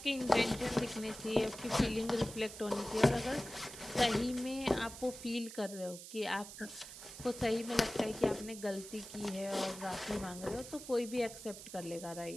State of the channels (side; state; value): right; noise; hiss, 13 dB below the sound